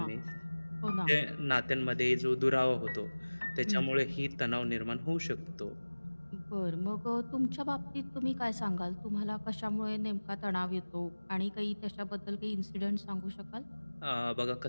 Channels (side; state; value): both; inverted; correlation -1.00